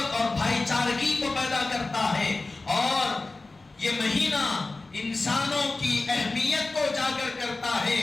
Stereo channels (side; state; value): right; quieter; 3.4 dB